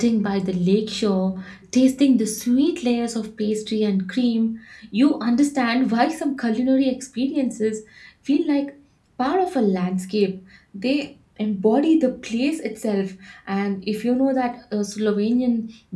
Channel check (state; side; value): identical; both; correlation 1.00